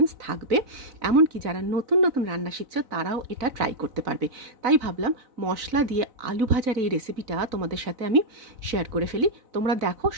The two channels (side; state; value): left; late; 4.0 ms